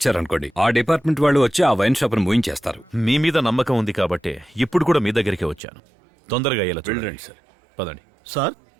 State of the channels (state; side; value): drops out; left; at 5.6 s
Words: ఆ డిపార్ట్మెంట్ వాళ్ళు వచ్చి ఆ వైన్ షాప్ ను మూయించేస్తారు. మీ మీద నమ్మకం ఉంది కాబట్టే ఇప్పుడు కూడా మీ దగ్గరికి వచ్చాను. తొందరగా అయ్యేలా చూడండి. సార్, పదండి. సార్,